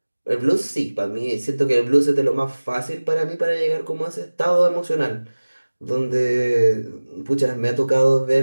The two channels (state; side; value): inverted; both; correlation -1.00